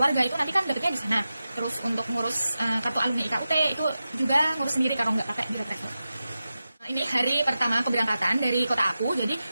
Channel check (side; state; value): both; inverted; correlation -0.93